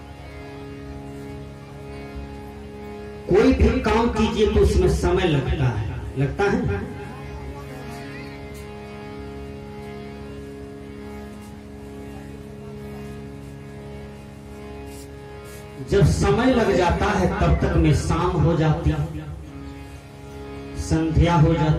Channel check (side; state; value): both; identical; correlation 1.00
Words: कोई भी काम कीजिए तो उसमें समय लगता है। जब समय लग जाता है तब तक में शाम हो जाती है, संध्या हो